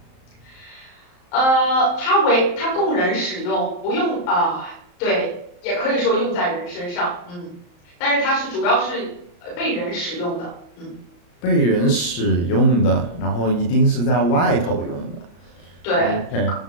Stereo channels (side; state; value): right; late; 34 ms